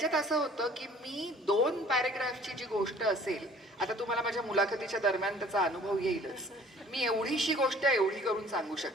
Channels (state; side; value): normal; both; correlation 0.52